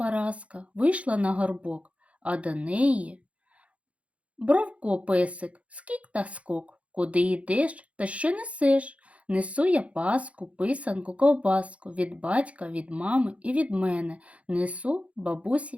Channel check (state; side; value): late; left; 0.064 ms